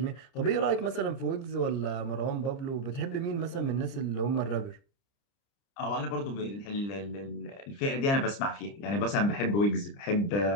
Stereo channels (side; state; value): right; late; 30 ms